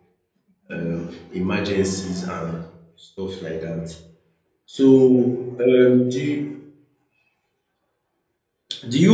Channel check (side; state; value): both; identical; correlation 1.00